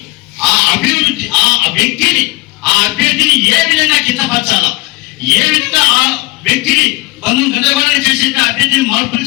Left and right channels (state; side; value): quieter; right; 22.1 dB